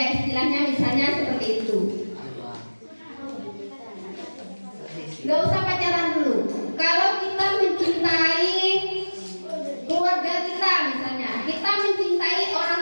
istilahnya misalnya seperti itu. Gak usah pacaran dulu. Kalau kita mencintai keluarga kita misalnya, kita mencintai orang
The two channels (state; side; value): inverted; both; correlation -1.00